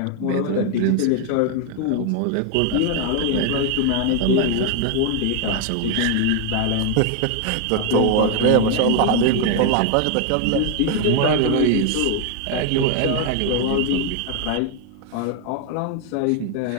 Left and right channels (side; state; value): both; different; correlation 0.00